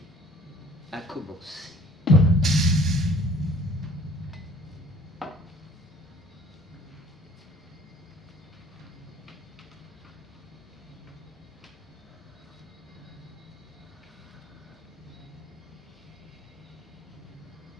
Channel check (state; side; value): normal; both; correlation 0.52